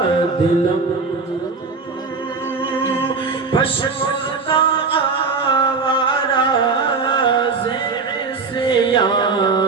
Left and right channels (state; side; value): quieter; left; 4.5 dB